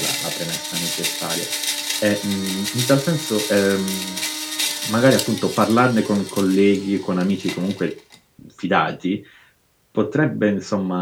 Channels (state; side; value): identical; both; correlation 1.00